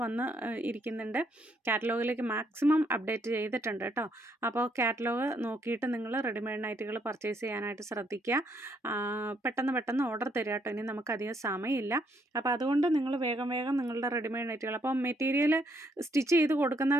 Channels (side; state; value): both; normal; correlation 0.72